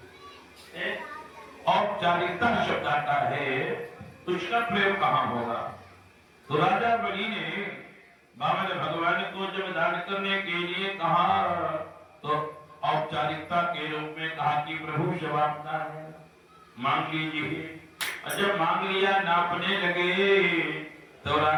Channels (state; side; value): identical; both; correlation 1.00